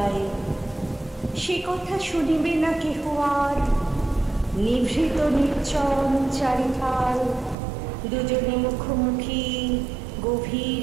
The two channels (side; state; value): left; drops out; at 7.6 s